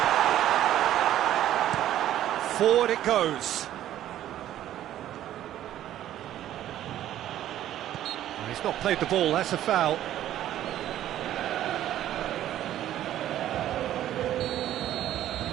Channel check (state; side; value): quieter; left; 12.3 dB